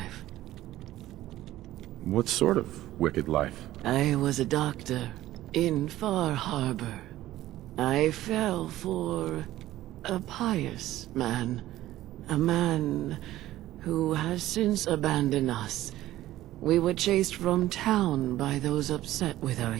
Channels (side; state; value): left; quieter; 14.9 dB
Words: What sort of wicked life? I was a doctor in Far Harbor. I fell for a pious man. A man who has since abandoned us. We were chased from town by those upset with our